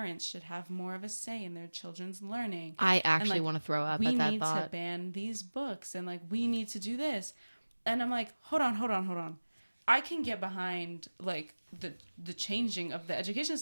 should have more of a say in their children's learning. I actually like, want to throw up we at that need to thought. ban these books and like we need to do this. And I'm like, hold on. I can get behind like the changing of the education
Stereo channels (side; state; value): both; inverted; correlation -1.00